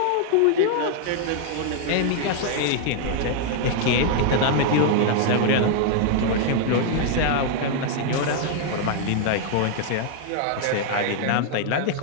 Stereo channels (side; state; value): both; different; correlation 0.00